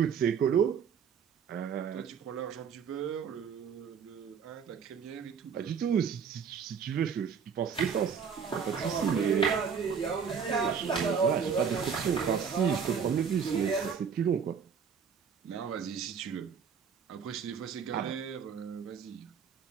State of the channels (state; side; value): quieter; left; 6.8 dB